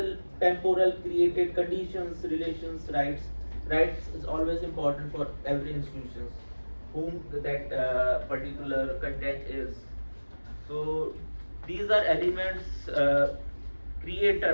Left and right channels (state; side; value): inverted; both; correlation -1.00